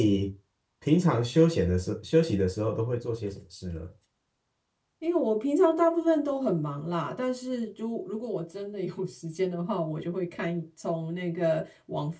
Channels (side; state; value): both; identical; correlation 1.00